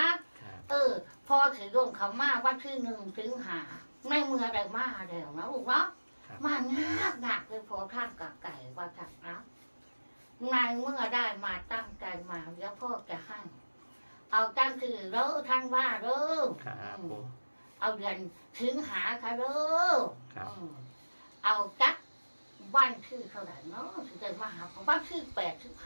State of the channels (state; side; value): inverted; both; correlation -1.00